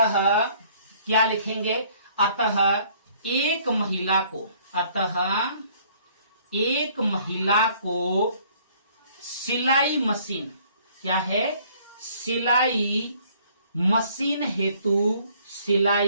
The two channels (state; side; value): inverted; both; correlation -0.59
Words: क्या लिखेंगे? अतः एक महिला को, अतः एक महिला को सिलाई मशीन, क्या है? सिलाई मशीन हेतु,